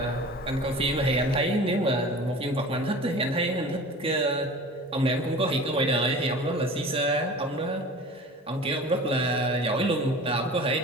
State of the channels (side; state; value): both; normal; correlation 0.39